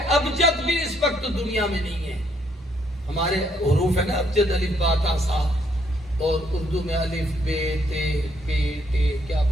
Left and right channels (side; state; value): both; normal; correlation 0.71